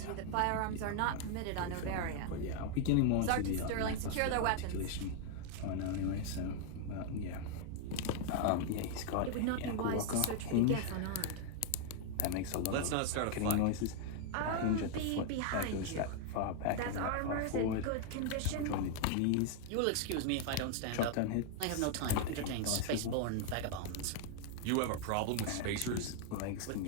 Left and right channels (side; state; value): both; different; correlation 0.00